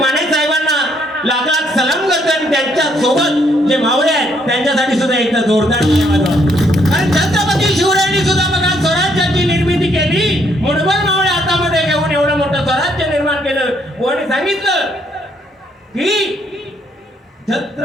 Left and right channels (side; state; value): both; normal; correlation 0.70